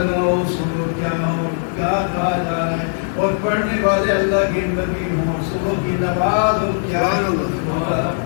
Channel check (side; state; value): right; silent; digital silence